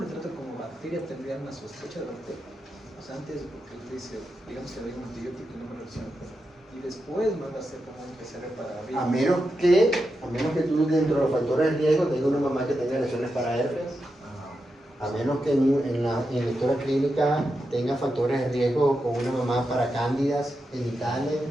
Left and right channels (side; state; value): both; normal; correlation 0.88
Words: trato como bacteria, tendría una sospecha de bacteria. O sea, antes, porque él dice, digamos que le doy un antibiótico y no me reacciona. Y después me va a hacer como un PCR para virus. A menos que tú dentro de los factores de riesgo tengas una mamá que tenga lesiones para herpes, a menos que en la historia clínica tenga factores de riesgo con una mamá para cándidas genitales,